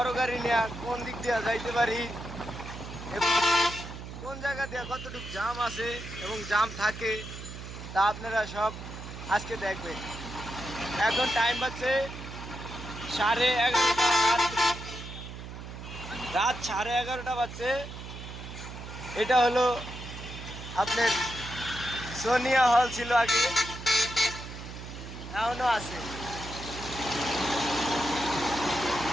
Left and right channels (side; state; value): right; noise; hum, 11 dB below the sound